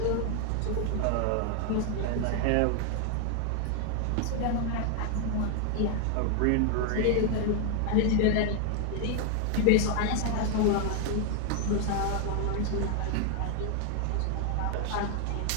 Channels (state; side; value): different; both; correlation 0.00